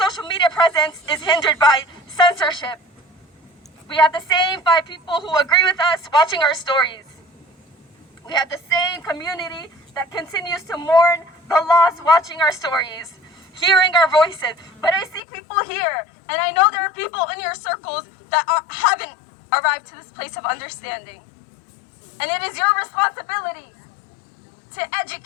media presence is hindered by censorship. We have the same 5 people who agree with us watching our stories. We have the same community that continues to mourn the loss watching our stories, hearing our voices. But I see people here, and I know there are people in your circles that haven't arrived to this place of understanding. And it is your responsibility to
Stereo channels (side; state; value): right; drops out; at 15.2 s